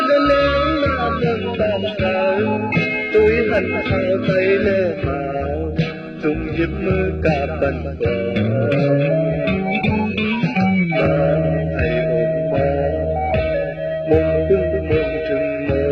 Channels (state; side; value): identical; both; correlation 1.00